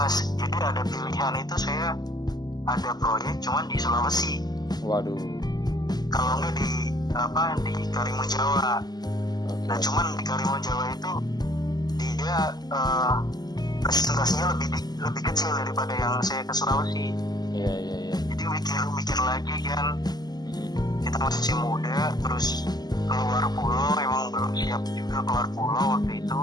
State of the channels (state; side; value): late; right; 0.20 ms